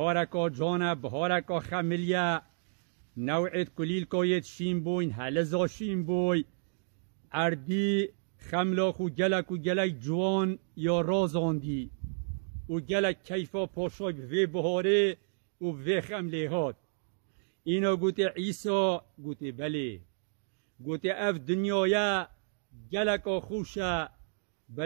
جانه بهارکا خملیه نوعیت کلیل کایت شیم بوین هلزا شیم بوی اردی خملاخ و گلک جوان یا رازاندی و گلک کیفا پاشای به بهاره و به خمله هات اینا گوته عیسا گوته بله گوته اف دنیای گلک خوشه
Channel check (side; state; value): left; silent; digital silence